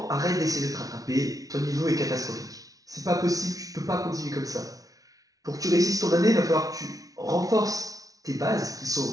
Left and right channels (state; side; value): late; left; 0.18 ms